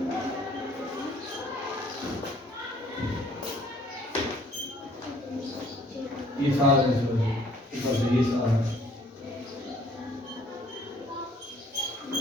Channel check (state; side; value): normal; both; correlation 0.59